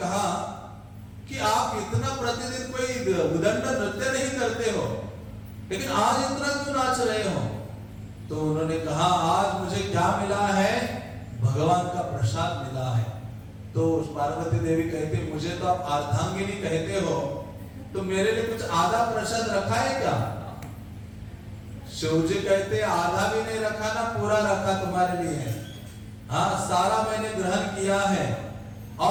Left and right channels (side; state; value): both; identical; correlation 1.00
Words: कि आप इतना प्रतिदिन कोई उदंड नृत्य नहीं करते हो, लेकिन आज इतना क्यों नाच रहे हो? तो उन्होंने कहा आज मुझे क्या मिला है? भगवान का प्रसाद मिला है। तो पार्वती देवी कहते मुझे तो आप अर्धांगिनी कहते हो, तो मेरे लिए कुछ आधा प्रसाद रखा है क्या? शिव जी कहते आधा भी नहीं रखा ना, पूरा रखा तुम्हारे लिए। हाँ, सारा मैंने ग्रहण किया है।